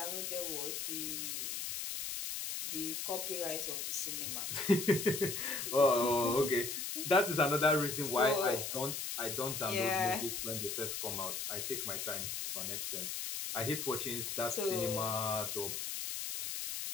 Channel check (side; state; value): left; noise; hiss, 3 dB below the sound